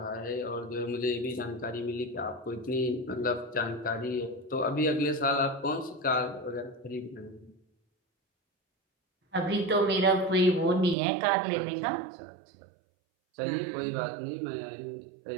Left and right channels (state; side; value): drops out; left; at 11.0 s